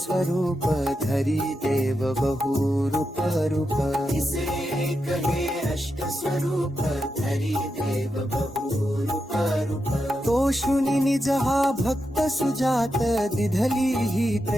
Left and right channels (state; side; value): normal; both; correlation 0.87